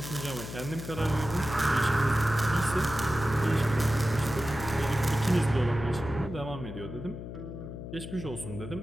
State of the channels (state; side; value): noise; left; hum, 9 dB below the sound